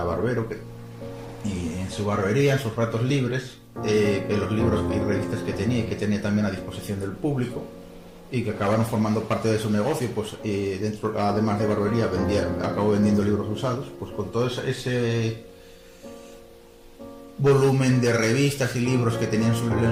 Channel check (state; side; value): identical; both; correlation 1.00